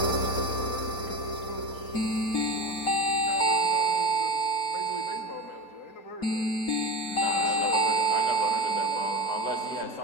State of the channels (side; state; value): right; late; 4.3 ms